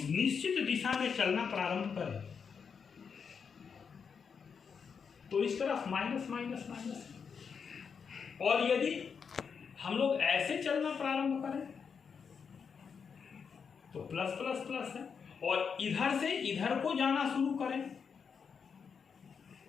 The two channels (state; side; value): quieter; right; 6.3 dB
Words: निश्चित दिशा में चलना प्रारंभ करें तो इस तरफ माइनस माइनस माइनस, और यदि हम लोग ऐसे चलना प्रारंभ करें तो प्लस प्लस प्लस है, और इधर से इधर को जाना शुरू करें